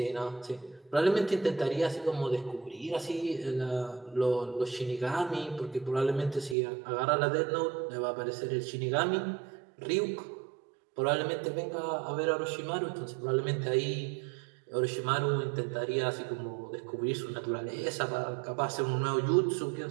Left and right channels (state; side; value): drops out; left; at 6.6 s